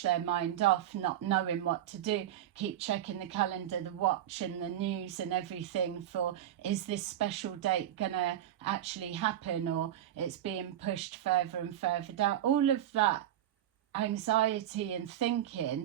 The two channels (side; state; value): left; quieter; 11.6 dB